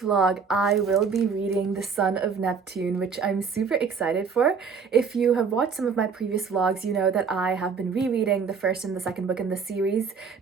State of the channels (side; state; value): left; quieter; 5.8 dB